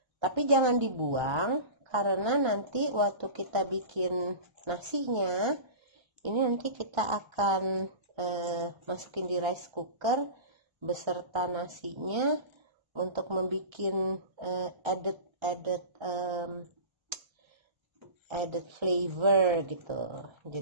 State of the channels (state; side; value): late; left; 1.3 ms